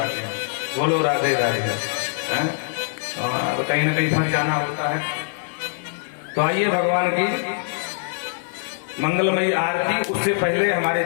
हैं। बोलो राधे राधे। तो कहीं ना कहीं फंस जाना होता है। तो आइए भगवान की मंगलमयी आरती, उससे पहले हमारे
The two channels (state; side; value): silent; right; digital silence